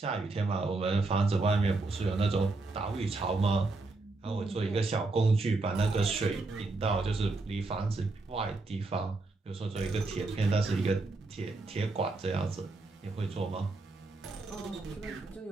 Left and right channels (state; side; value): quieter; left; 3.4 dB